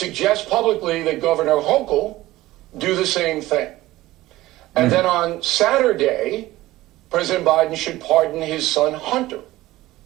publicly that Governor Hochul do the same thing. And then on Saturday, President Biden should pardon his son Hunter.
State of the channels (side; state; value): left; quieter; 17.1 dB